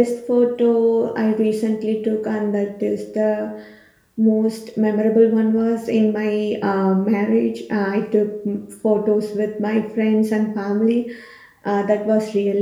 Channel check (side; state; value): both; identical; correlation 1.00